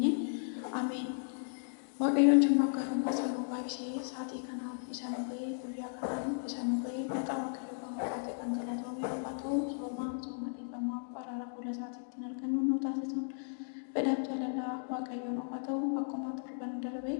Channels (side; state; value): right; silent; digital silence